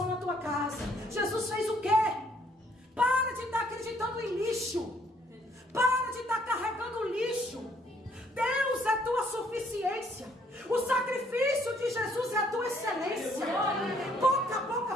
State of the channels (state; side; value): normal; both; correlation 0.65